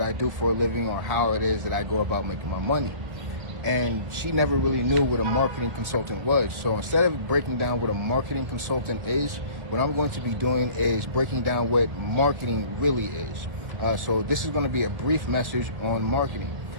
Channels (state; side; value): late; left; 1.4 ms